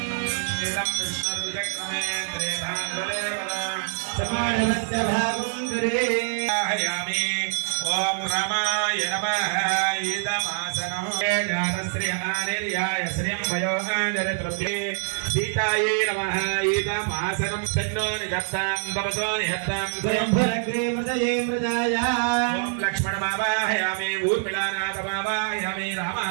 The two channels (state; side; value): silent; left; 62 dB below the other